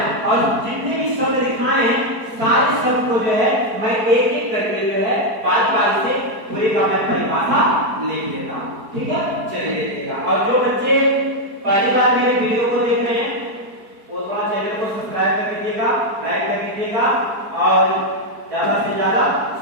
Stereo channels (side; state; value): left; late; 4.6 ms